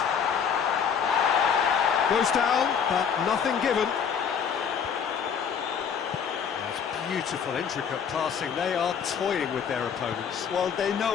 Goes down, but nothing given. That's beautiful, intricate passing. They are toying with their opponents. Well, they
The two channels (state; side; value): quieter; right; 7.2 dB